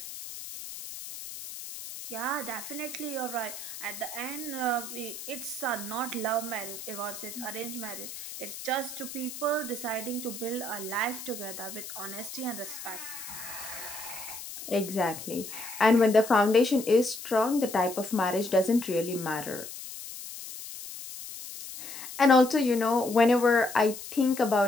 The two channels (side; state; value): left; noise; hiss, 11 dB below the sound